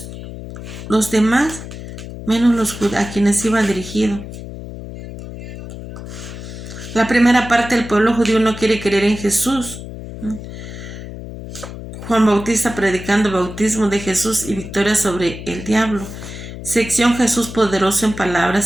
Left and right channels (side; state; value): left; noise; hum, 11 dB below the sound